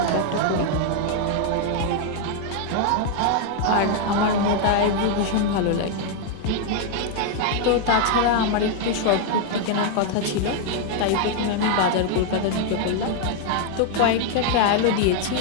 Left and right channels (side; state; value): both; different; correlation 0.00